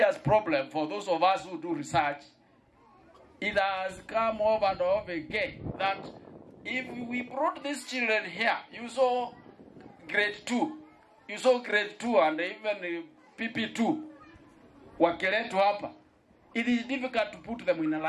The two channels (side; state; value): both; identical; correlation 1.00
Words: problem for those of us who do research. It has come over and over again that if we brought these children here, you saw grade 2, and even PP2, Wongeleku hapa, it is difficult to put them in a